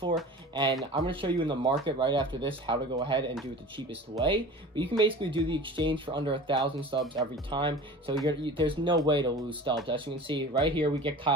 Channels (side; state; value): both; normal; correlation 0.38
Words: And I'm going to show you in the market right after this how to go ahead and do it the cheapest way. But you can basically do the exchange for under 1,000 stubs every time. So there's no way to lose stubs. As you can see right here, we get